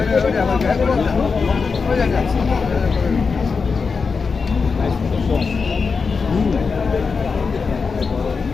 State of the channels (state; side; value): quieter; right; 5.0 dB